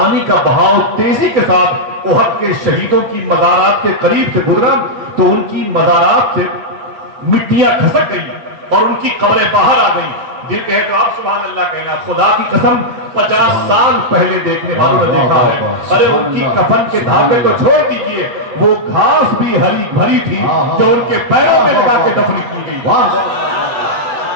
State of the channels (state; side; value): late; left; 7.9 ms